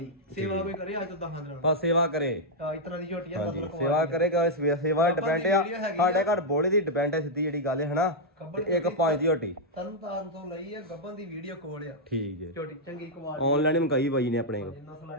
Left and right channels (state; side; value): normal; both; correlation -0.04